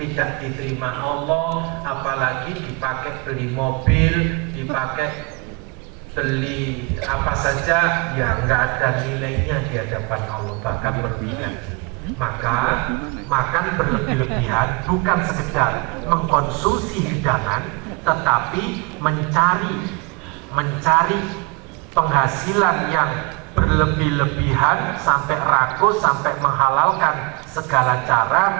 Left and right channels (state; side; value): quieter; left; 28.4 dB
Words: diterima Allah, apalagi dipakai beli mobil, dipakai beli apa saja yang nggak ada nilainya di hadapan Allah, bahkan merugikan. Maka makan berlebih-lebihan bukan sekedar mengkonsumsi hidangan, tetapi mencari penghasilan yang berlebih-lebihan sampai rakus, sampai menghalalkan segala